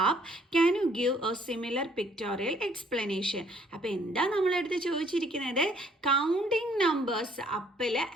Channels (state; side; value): normal; both; correlation 0.63